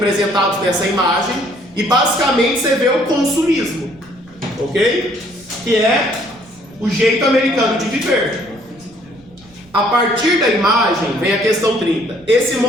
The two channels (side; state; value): right; noise; rumble, 27 dB below the sound